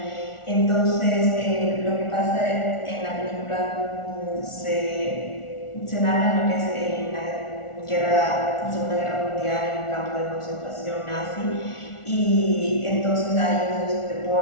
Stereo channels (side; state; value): right; late; 1.4 ms